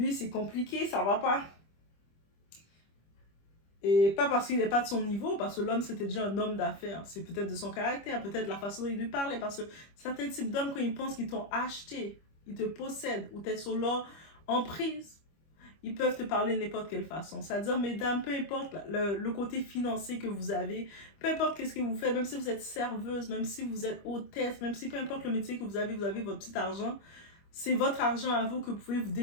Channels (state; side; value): late; right; 25 ms